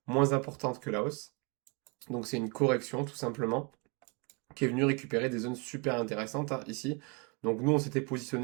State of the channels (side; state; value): left; quieter; 31.0 dB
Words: moins importante que la hausse. Donc c'est une correction tout simplement qui est venu récupérer des zones super intéressantes hein, ici. Donc nous, on s'était